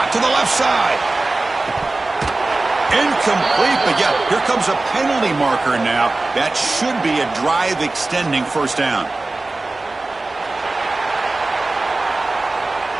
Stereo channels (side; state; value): left; quieter; 3.2 dB